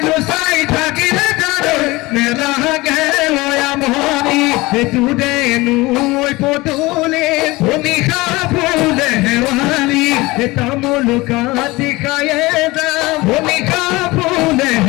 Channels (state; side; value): quieter; right; 21.3 dB